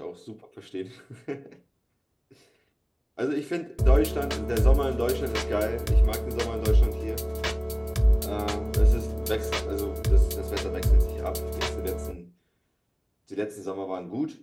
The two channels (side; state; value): both; identical; correlation 1.00